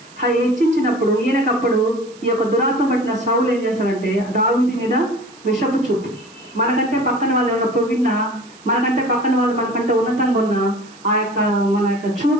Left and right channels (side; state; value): right; noise; hiss, 25 dB below the sound